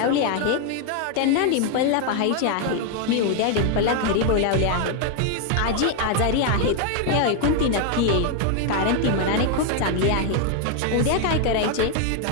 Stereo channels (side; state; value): both; different; correlation 0.01